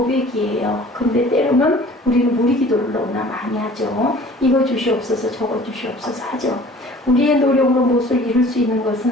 근데 때로는 우리는 우리 기도를 너무나 많이 하죠. 이거 주시옵소서 저거 주시옵소서 하죠. 우리의 노력으로 무엇을 이룰 수 있는 것은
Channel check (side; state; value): both; normal; correlation 0.48